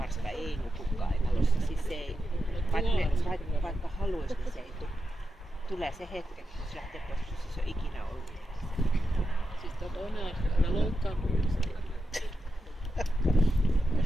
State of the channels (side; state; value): both; normal; correlation 0.88